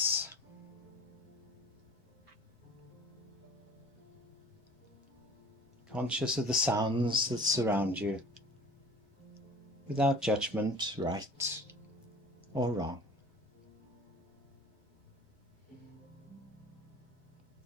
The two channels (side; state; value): both; normal; correlation 0.43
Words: Conscious of the sounds that surround you, without judgment, right or wrong.